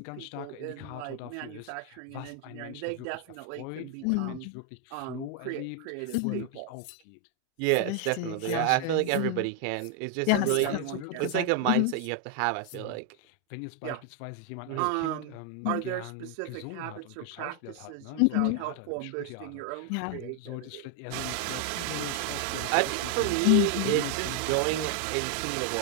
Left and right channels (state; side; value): different; both; correlation 0.00